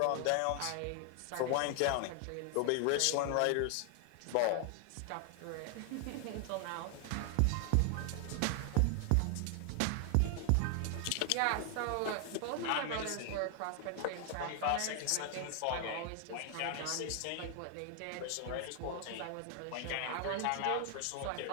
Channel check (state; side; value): different; both; correlation 0.00